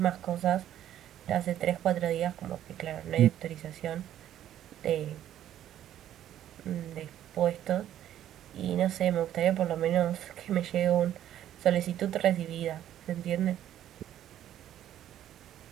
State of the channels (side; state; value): left; quieter; 11.5 dB